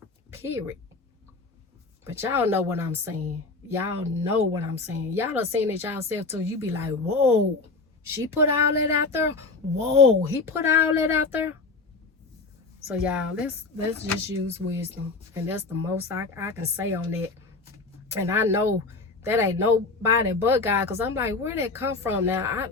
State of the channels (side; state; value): right; quieter; 3.8 dB